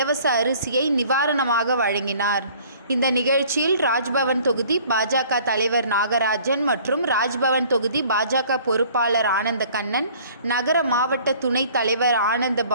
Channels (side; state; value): both; inverted; correlation -0.53